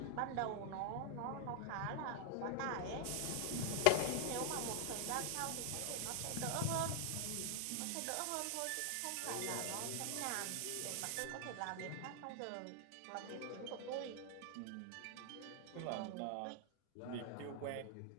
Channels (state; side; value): different; both; correlation 0.00